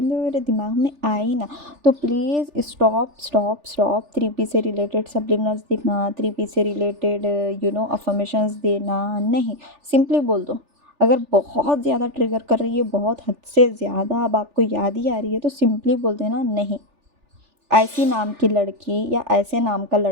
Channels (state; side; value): late; left; 3.4 ms